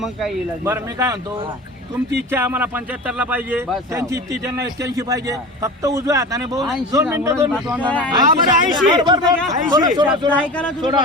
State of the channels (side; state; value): both; normal; correlation 0.33